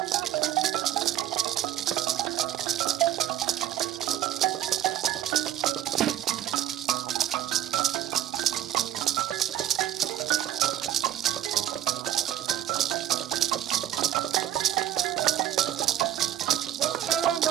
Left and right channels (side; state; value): left; quieter; 12.0 dB